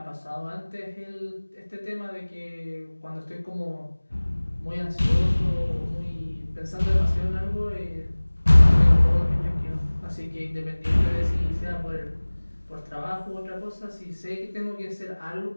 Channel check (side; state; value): both; inverted; correlation -1.00